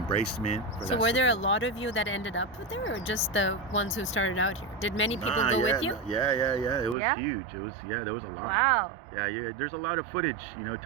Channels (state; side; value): drops out; left; at 7.0 s